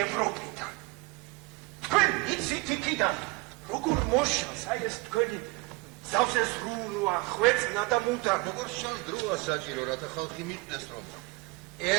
ევროპიდან. თქვენ იცით იქიდან, როგორ მოშალს აი ეს თქვენი ზავზე ზრუნვა, ხვეწნა და მუდა. როგორ შანს დროა საჭირო, რათა ხალხი მიხვდეს, რომ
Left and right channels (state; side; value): quieter; left; 24.7 dB